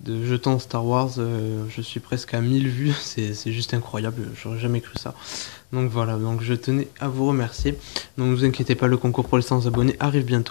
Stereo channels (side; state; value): right; silent; digital silence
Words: jetons Star Wars. Je suis presque à 1000 vues, c'est juste incroyable, j'aurais jamais cru ça. Donc voilà, donc je tenais à vous remercier. Donc ne vous inquiétez pas, le concours pour les 100 abonnés arrive